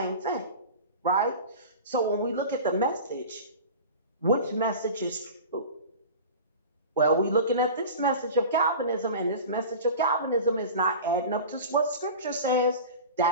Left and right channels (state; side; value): inverted; both; correlation -0.35